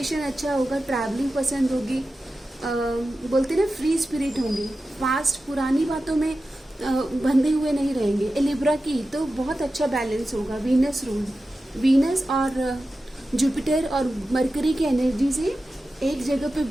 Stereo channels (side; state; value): both; normal; correlation 0.93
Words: अच्छा होगा, ट्रैवलिंग पसंद होगी, बोलते ना फ्री स्पिरिट होंगे, फास्ट पुरानी बातों में बंधे हुए नहीं रहेंगे। लिब्रा की तो बहुत अच्छा बैलेंस होगा, वीनस रूल, वीनस और जुपिटर और मरकरी की एनर्जी से एक जगह पे